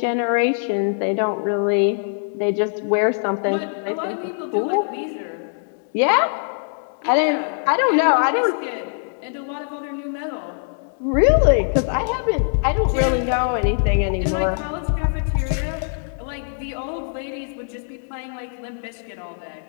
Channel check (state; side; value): silent; right; digital silence